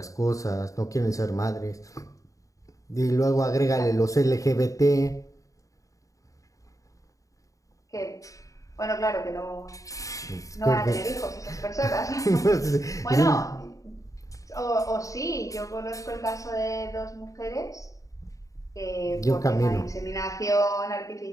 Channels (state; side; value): late; right; 0.16 ms